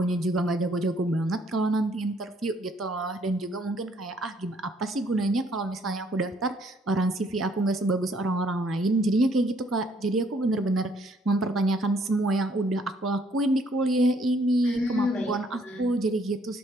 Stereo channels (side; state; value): both; normal; correlation 0.66